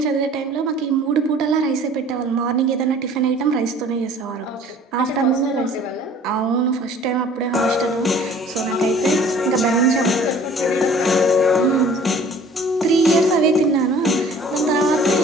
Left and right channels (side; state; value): both; normal; correlation 0.50